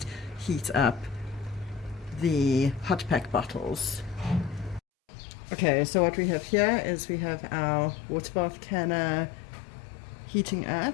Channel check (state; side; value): drops out; right; at 4.8 s